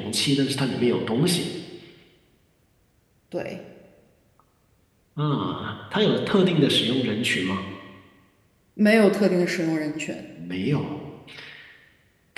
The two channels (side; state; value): both; identical; correlation 1.00